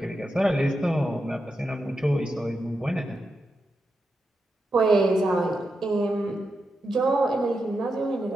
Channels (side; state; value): both; normal; correlation 0.87